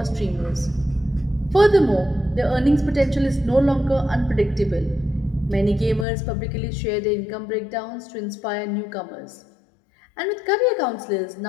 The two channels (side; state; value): right; drops out; at 6.1 s